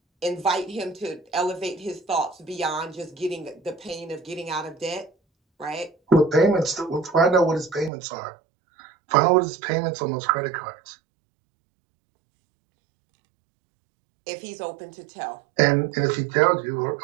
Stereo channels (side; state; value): left; drops out; at 7.9 s